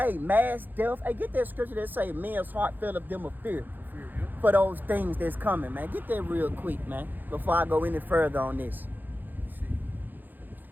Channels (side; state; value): left; late; 0.088 ms